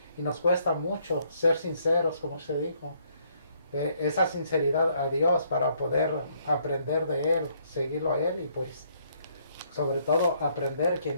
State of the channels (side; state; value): both; inverted; correlation -0.68